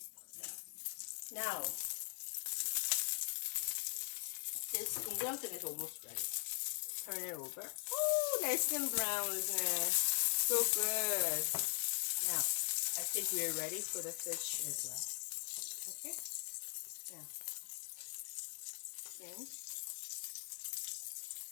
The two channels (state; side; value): silent; right; digital silence